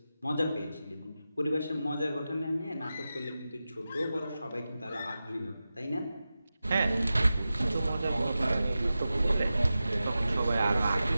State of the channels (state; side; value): inverted; both; correlation -0.93